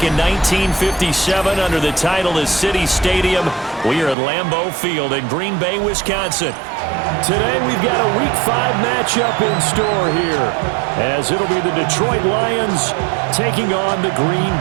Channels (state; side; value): drops out; left; at 4.2 s